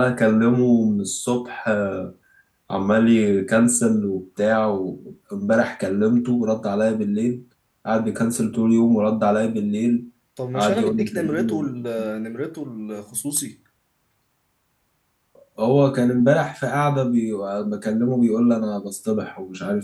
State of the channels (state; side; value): identical; both; correlation 1.00